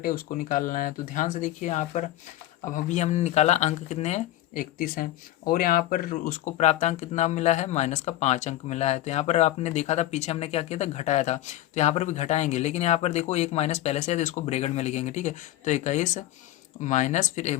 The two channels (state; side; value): quieter; right; 14.5 dB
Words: उसको निकालना है। तो ध्यान से देखिए यहाँ पर, अब अभी हमने निकाला अंक कितने हैं, 31 हैं, और यहाँ पर उसको प्राप्तांक कितना मिला है, -5 अंक मिला है। तो यहाँ पर आपने देखा था पीछे हमने क्या किया था, घटाया था। तो यहाँ पर भी घटाएंगे, लेकिन यहाँ पर देखो एक माइनस पहले से है तो इसको ब्रैकेट में लिखेंगे, ठीक है। तो 21 माइनस फिर